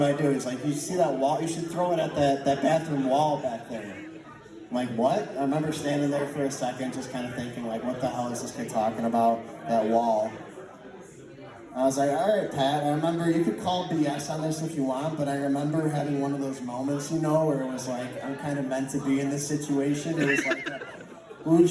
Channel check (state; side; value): identical; both; correlation 1.00